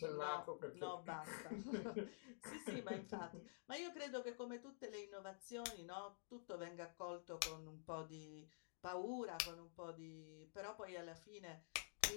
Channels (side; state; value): right; silent; digital silence